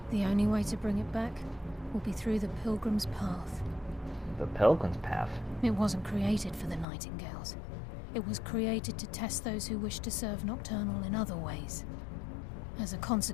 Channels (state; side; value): drops out; right; at 6.9 s